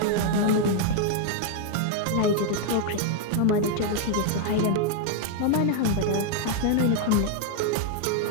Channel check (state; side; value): different; both; correlation 0.00